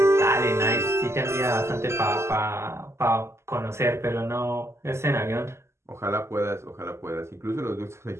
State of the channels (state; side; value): late; left; 0.13 ms